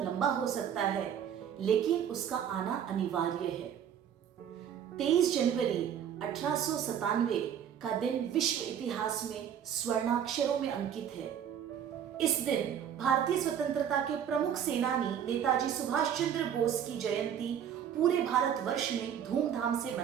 हो सकता है, लेकिन उसका आना अनिवार्य है। 23 जनवरी 1897 का दिन विश्व इतिहास में स्वर्णाक्षरों में अंकित है। इस दिन भारतीय स्वतंत्रता के प्रमुख सेनानी नेताजी सुभाष चंद्र बोस की जयंती पूरे भारतवर्ष में धूमधाम से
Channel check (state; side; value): quieter; left; 9.0 dB